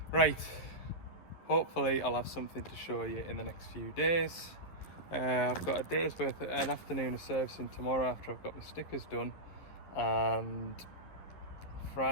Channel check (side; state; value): right; late; 11 ms